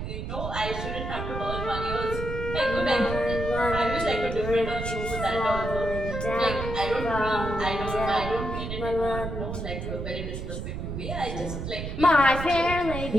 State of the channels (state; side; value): noise; right; rumble, 5 dB below the sound